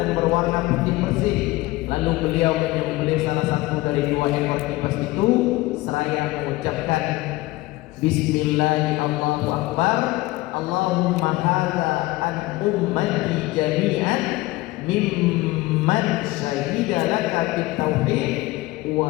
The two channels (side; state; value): right; quieter; 19.7 dB